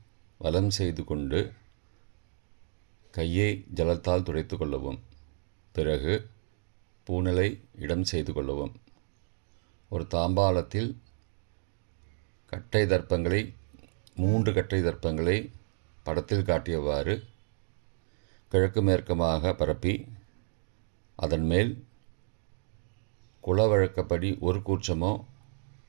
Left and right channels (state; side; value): silent; left; digital silence